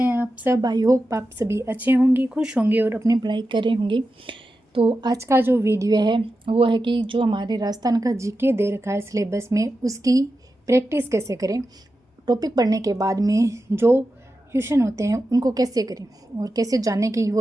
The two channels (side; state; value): both; normal; correlation 0.91